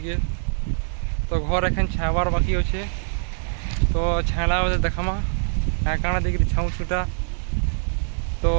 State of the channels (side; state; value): left; silent; 63 dB below the other